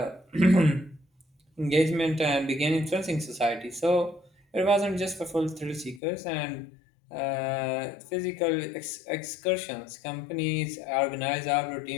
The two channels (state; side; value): drops out; right; at 6.0 s